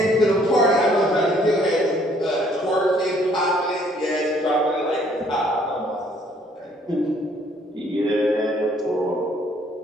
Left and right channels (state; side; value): normal; both; correlation 0.63